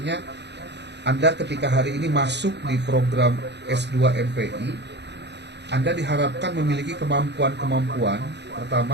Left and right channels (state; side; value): late; left; 0.50 ms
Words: Anda ketika hari ini masuk di program S2 MPI, Anda diharapkan memiliki kemampuan-kemampuan.